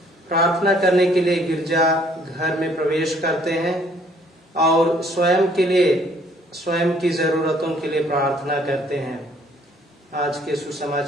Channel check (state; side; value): normal; both; correlation 0.62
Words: प्रार्थना करने के लिए गिरजा घर में प्रवेश करते हैं और स्वयं की जरूरतों के लिए प्रार्थना करते हैं। आज के